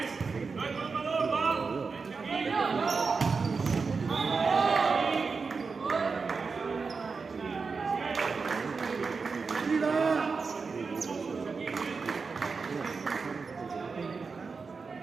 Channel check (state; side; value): quieter; left; 4.8 dB